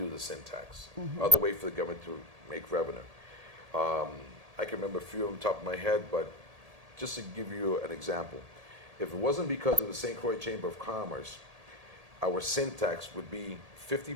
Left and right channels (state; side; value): late; left; 1.8 ms